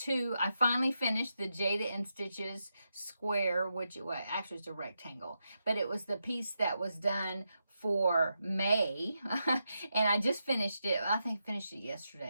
I finally finished the Jada and Stitches square, which actually it's a rectangle, but it was the piece that was done for May. And I just finished it. I think I finished it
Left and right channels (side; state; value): both; inverted; correlation -0.85